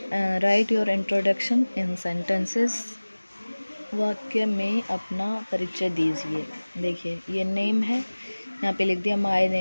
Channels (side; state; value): both; inverted; correlation -1.00